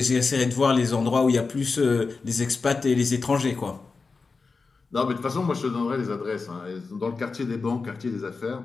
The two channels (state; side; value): quieter; right; 4.4 dB